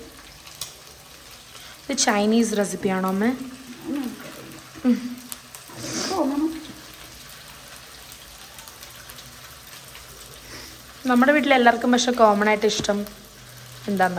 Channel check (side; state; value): both; identical; correlation 1.00